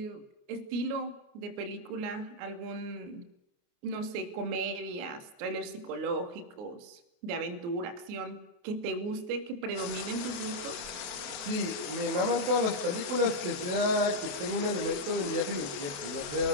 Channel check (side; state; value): left; late; 28 ms